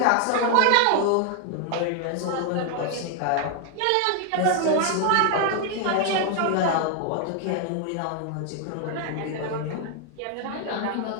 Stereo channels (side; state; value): both; different; correlation 0.00